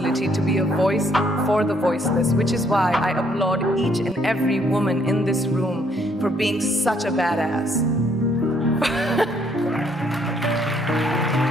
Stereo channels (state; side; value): normal; both; correlation 0.68